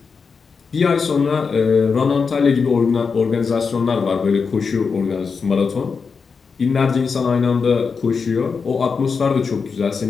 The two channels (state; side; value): quieter; right; 5.3 dB